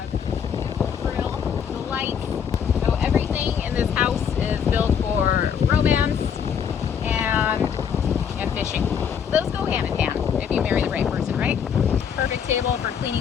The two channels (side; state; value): right; quieter; 7.7 dB